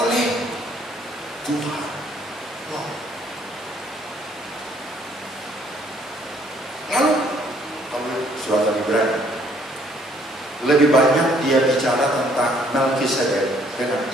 Tuhan. Lalu surat Ibrani lebih banyak dia bicara tentang Melkisedek dengan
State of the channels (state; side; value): normal; both; correlation 0.63